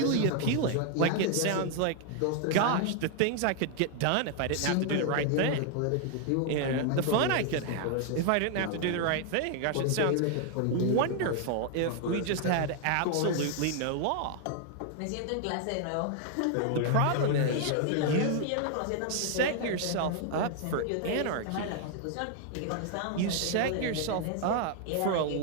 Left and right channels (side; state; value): both; different; correlation 0.00